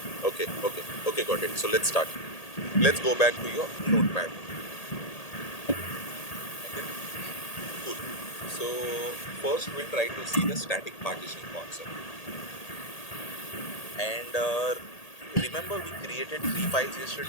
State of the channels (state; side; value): late; right; 1.8 ms